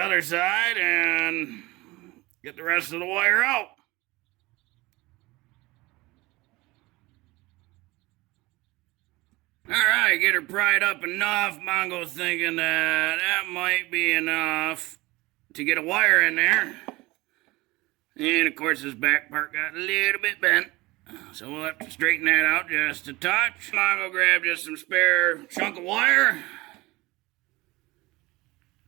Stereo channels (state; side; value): quieter; left; 21.6 dB